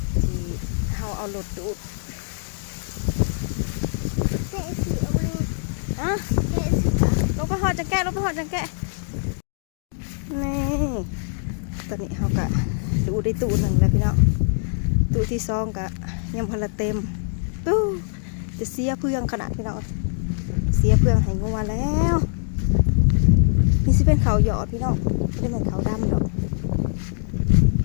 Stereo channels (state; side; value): silent; right; 63 dB below the other